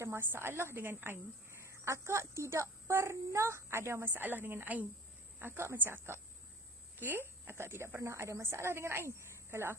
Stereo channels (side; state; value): both; normal; correlation 0.42